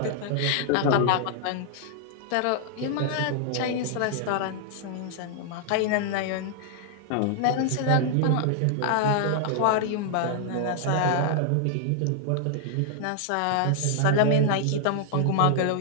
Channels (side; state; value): both; different; correlation 0.00